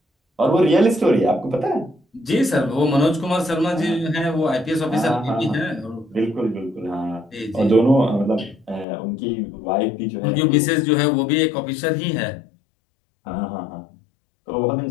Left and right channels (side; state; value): right; drops out; at 8.8 s